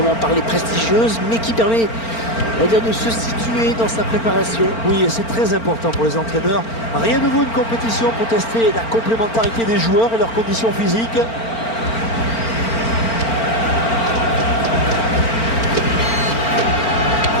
parler prestigieuse, mais qui permet, on va dire, de se situer dans sa préparation. Oui, et c'est très important pour les entraîneurs. Rien ne vaut une compétition pour tester la complémentarité des joueurs et leurs conditions physiques.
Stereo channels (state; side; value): late; right; 4.4 ms